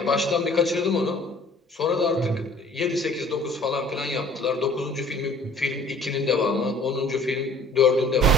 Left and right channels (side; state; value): both; normal; correlation 0.52